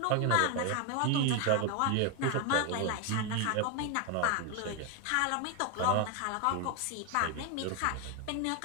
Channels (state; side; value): different; both; correlation 0.01